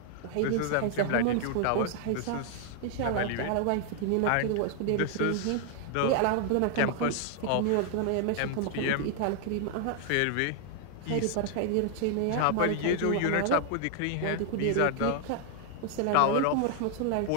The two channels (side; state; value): both; different; correlation 0.00